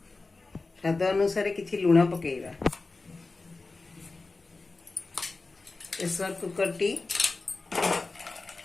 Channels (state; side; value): quieter; right; 3.6 dB